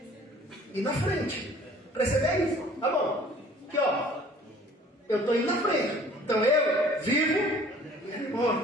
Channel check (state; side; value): normal; both; correlation 0.51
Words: Ir na frente. Preceder é isso. Tá bom. Aqui, ó. Eu estou indo na frente. Então eu vivo e ele